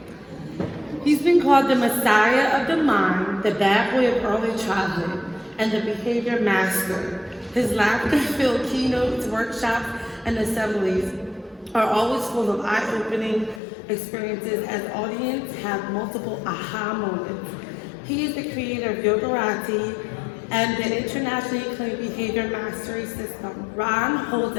He's been called the Messiah of the Mind, the bad boy of early childhood, and the behavior master. His laughter-filled keynotes, workshops, and assemblies are always full of eye-opening experiences as audiences have multiple aha moments. He is the creator of Yogarati and the internationally acclaimed behavior mastery system. Ron holds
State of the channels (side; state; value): right; drops out; at 13.6 s